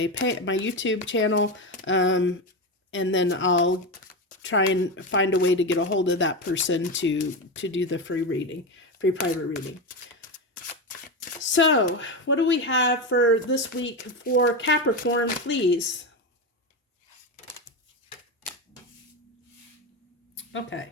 YouTube channel. And then I'll try and find a way to get a hold of that person to do the free private reading. So, what do we have for this week for Capricorn, please? Okay.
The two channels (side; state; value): both; normal; correlation 0.16